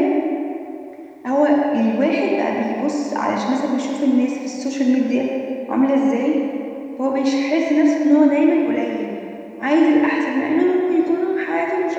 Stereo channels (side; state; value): both; identical; correlation 1.00